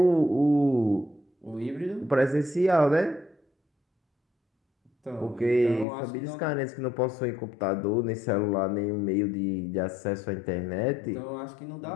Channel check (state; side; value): drops out; right; at 5.9 s